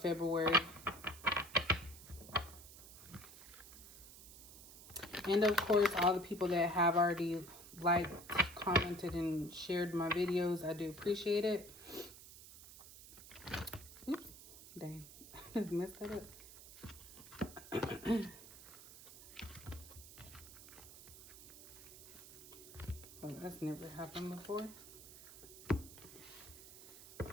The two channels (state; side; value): noise; right; hiss, 16 dB below the sound